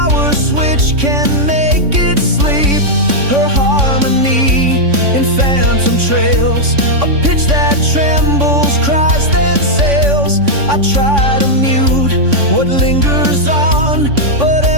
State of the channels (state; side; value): late; left; 3.6 ms